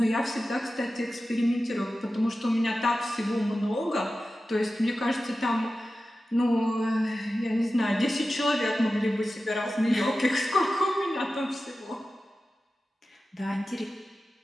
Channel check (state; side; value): normal; both; correlation 0.94